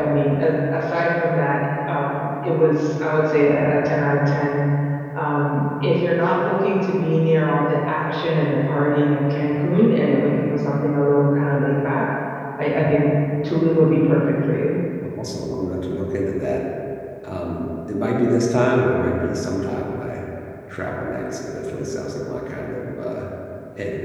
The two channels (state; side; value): identical; both; correlation 1.00